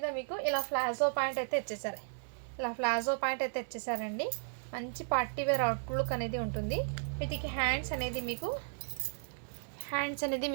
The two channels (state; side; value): silent; left; digital silence